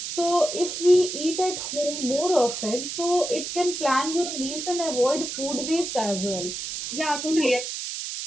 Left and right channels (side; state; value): right; noise; hiss, 6 dB below the sound